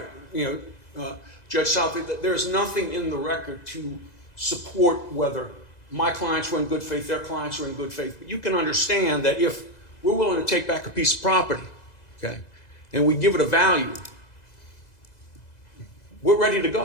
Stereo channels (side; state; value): right; late; 2.0 ms